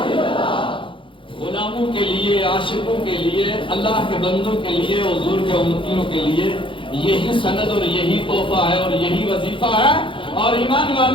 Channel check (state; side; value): late; right; 0.25 ms